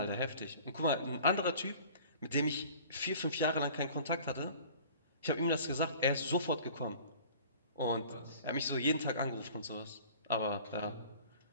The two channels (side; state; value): both; inverted; correlation -0.47